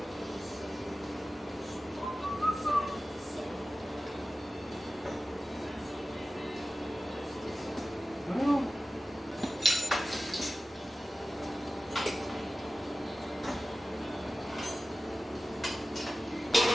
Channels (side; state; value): both; normal; correlation 0.95